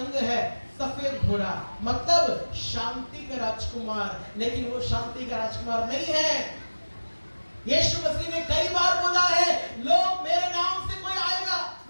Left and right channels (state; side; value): inverted; both; correlation -1.00